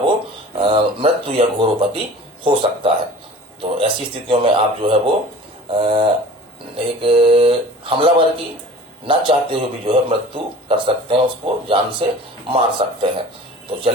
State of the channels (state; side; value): normal; both; correlation 0.42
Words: मृत्यु या घोरोपति हो सकता है। तो ऐसी स्थितियों में आप जो है वो एक हमलावर की न चाहते हुए भी जो है मृत्यु कर सकते हैं, उसको जान से मार सकते हैं। तो